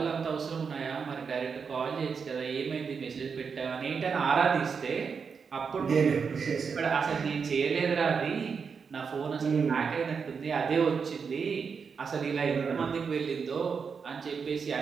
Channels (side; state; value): left; quieter; 5.8 dB